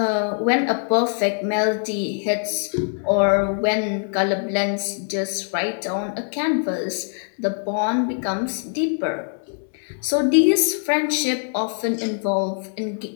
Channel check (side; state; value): right; silent; 64 dB below the other